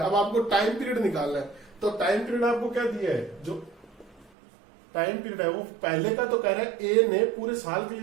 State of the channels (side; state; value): left; drops out; at 4.3 s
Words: अब आपको टाइम पीरियड निकालना है, तो टाइम पीरियड आपको क्या दिया है, जो टाइम पीरियड है वो पहले का तो कह रहा है ए ने पूरे साल के